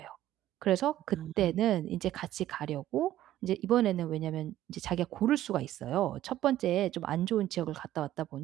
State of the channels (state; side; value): quieter; left; 13.5 dB